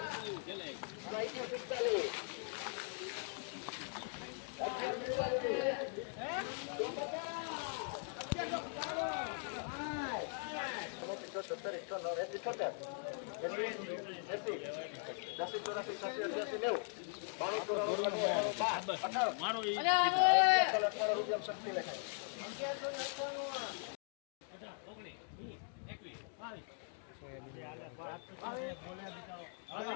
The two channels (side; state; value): right; silent; 51 dB below the other